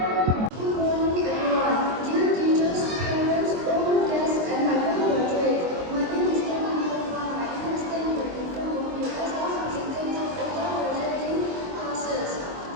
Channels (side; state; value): left; late; 23 ms